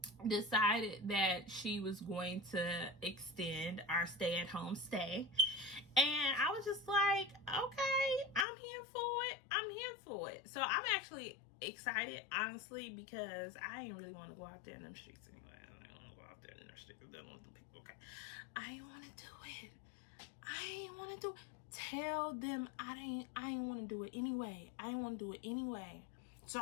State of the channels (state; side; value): drops out; right; at 8.5 s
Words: decided that she was going to extend our stay-at-home stay, and I was just like, okay, I'm here for it. So I'm actually excited, honestly, because I ain't really want to go out there in them streets anyway. I don't want to go out there in them streets dealing with the people. Okay, I ain't want to do it. Tell them I ain't want to do it anyway. So